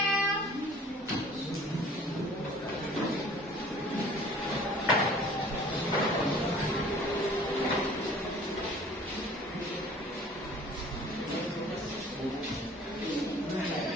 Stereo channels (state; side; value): normal; both; correlation 0.50